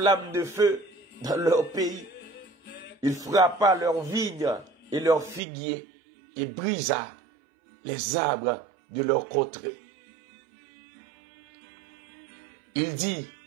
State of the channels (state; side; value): drops out; left; at 5.4 s